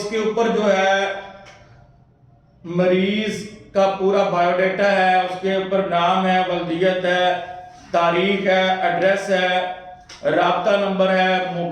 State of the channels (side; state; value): both; identical; correlation 1.00